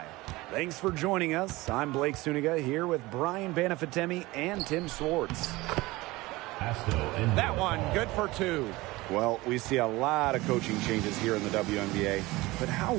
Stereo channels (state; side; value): quieter; left; 20.5 dB